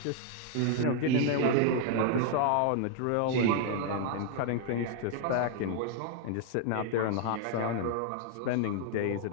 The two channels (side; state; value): both; different; correlation 0.00